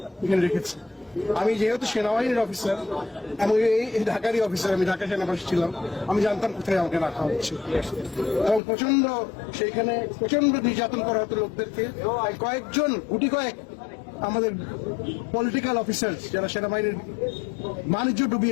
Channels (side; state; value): right; drops out; at 8.6 s